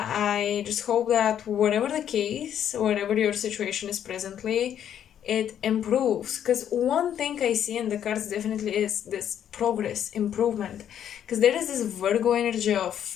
I just hope that whatever the case, whatever your situation is presently, it improves. Because one thing I see in the cards definitely is this progress, improvement. Because there is this Virgo energy of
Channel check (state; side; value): quieter; right; 9.8 dB